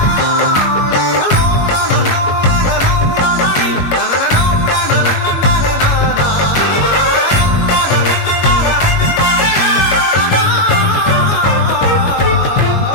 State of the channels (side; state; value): right; late; 22 ms